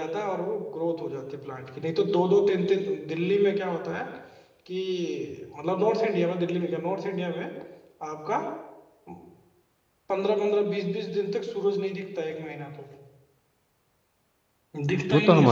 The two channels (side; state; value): both; identical; correlation 1.00